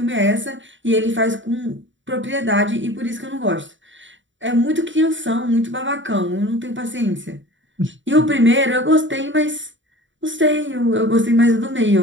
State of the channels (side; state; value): left; late; 0.55 ms